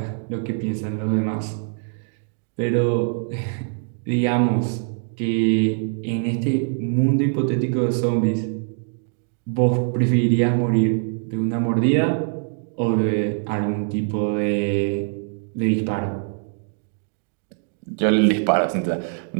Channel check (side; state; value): left; silent; 63 dB below the other